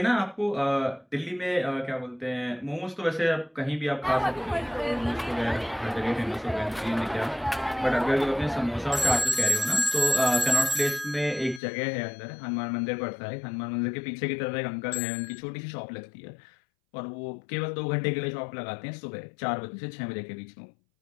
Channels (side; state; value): right; drops out; at 11.6 s